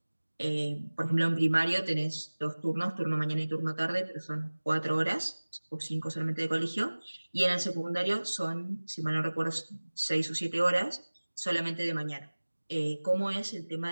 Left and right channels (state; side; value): inverted; both; correlation -1.00